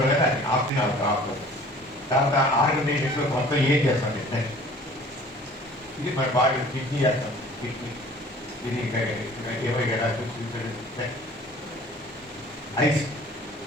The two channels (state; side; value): normal; both; correlation 0.49